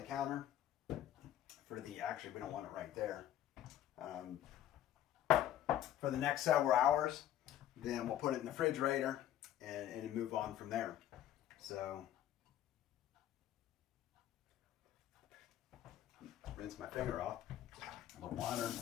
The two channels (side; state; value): right; quieter; 11.7 dB